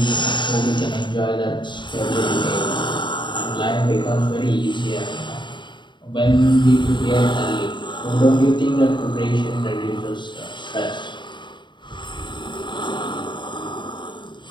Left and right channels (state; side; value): late; right; 0.23 ms